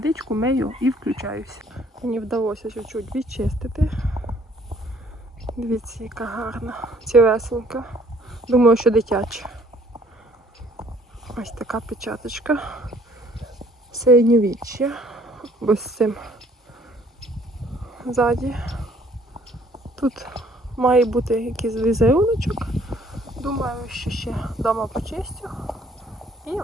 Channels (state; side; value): normal; both; correlation 0.60